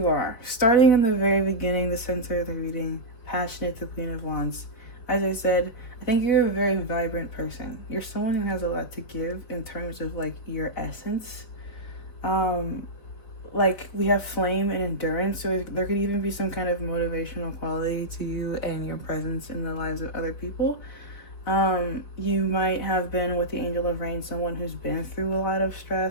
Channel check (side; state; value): right; late; 4.7 ms